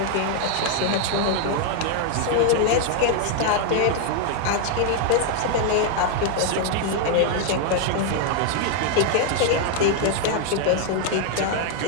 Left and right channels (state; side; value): different; both; correlation 0.00